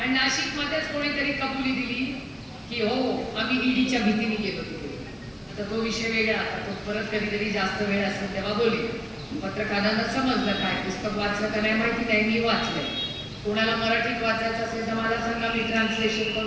नाशिक मध्येच कोणीतरी कबुली दिली की हो आम्ही ईडीच्या भीतीने गेलो तिथे. आता तो विषय वेगळा, आता तो परत कधीतरी जास्त वेळ असेल तेव्हा बोले. पत्रकारांना समजलं काय, पुस्तक वाचलं का नाही माहिती नाही, मी वाचलंय. कोणाला मराठीत वाचायचं असेल तर मला सांगा, मी ट्रान्सलेशन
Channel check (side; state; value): both; identical; correlation 1.00